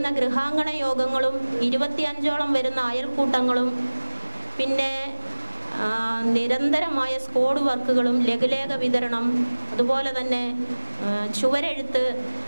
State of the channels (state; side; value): inverted; both; correlation -1.00